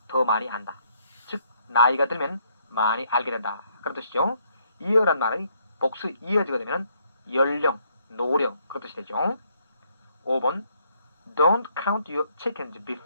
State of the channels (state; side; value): inverted; both; correlation -0.70